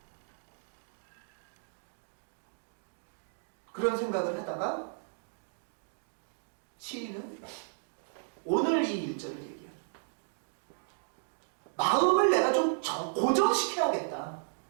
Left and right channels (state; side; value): silent; left; digital silence